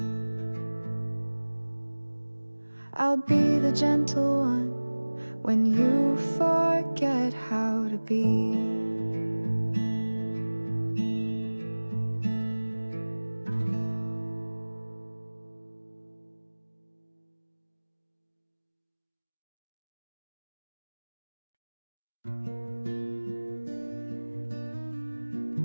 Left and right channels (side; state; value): both; inverted; correlation -1.00